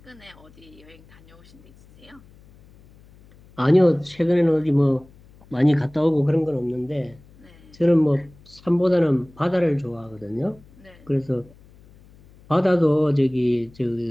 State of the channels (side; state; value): left; noise; hum, 26 dB below the sound